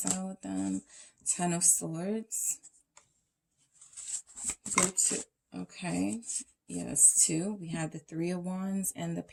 with them? 10 of Swords. Group 2. Okay. Yes, 2. We have the 3 of Wands and the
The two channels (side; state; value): both; identical; correlation 1.00